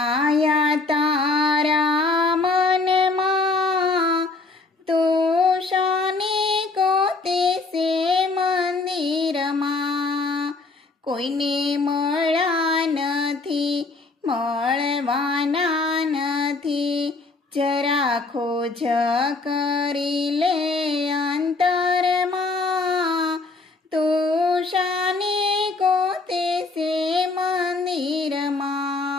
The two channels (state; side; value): quieter; right; 3.6 dB